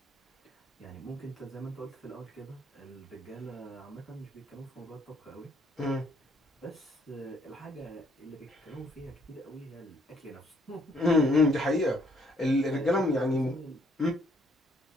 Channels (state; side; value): normal; both; correlation 0.67